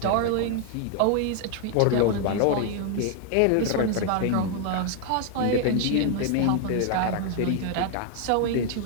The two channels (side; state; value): both; different; correlation 0.00